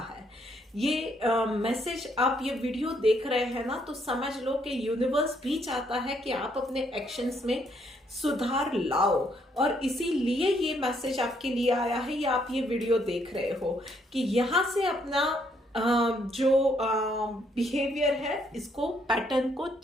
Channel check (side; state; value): both; normal; correlation 0.71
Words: है। ये मैसेज आप ये वीडियो देख रहे हैं ना, तो समझ लो कि यूनिवर्स भी चाहता है कि आप अपने एक्शंस में सुधार लाओ, और इसीलिए ये मैसेज आपके लिए आया है, या आप ये वीडियो देख रहे हो कि यहाँ से अपना जो बिहेवियर है, इसको, पैटर्न को